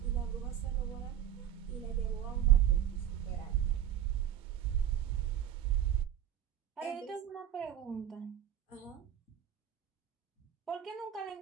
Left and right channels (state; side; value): quieter; left; 10.5 dB